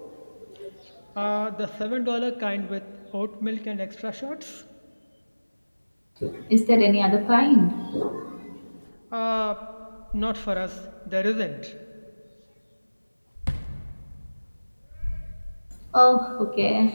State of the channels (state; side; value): inverted; both; correlation -1.00